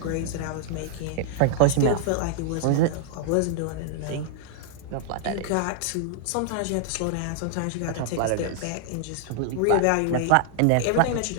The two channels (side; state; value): both; different; correlation -0.01